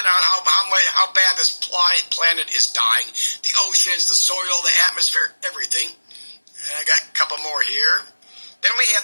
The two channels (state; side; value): inverted; both; correlation -1.00